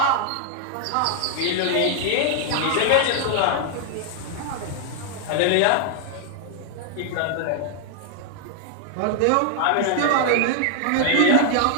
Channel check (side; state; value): both; different; correlation 0.00